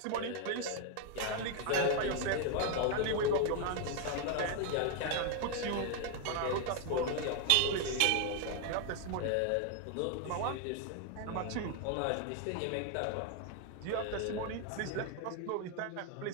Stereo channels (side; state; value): both; different; correlation 0.00